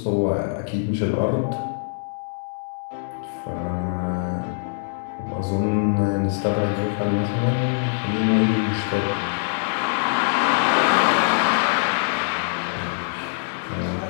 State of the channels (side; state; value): right; silent; digital silence